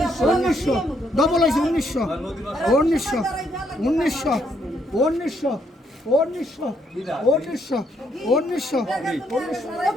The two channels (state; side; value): normal; both; correlation 0.73